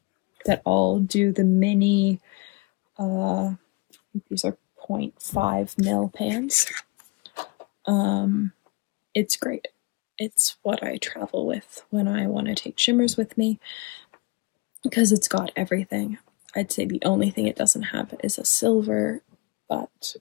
that all do the mini, I think these are 0.5 mil pans. it's great. It's what I travel with when I want to take shimmers with me because it's got everything. I'd say the only thing it doesn't have is a silver, but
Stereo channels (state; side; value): quieter; right; 24.7 dB